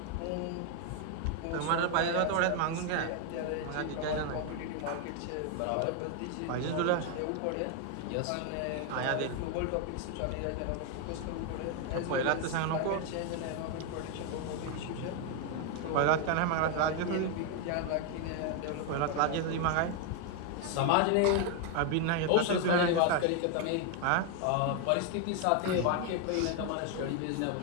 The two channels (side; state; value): both; different; correlation 0.01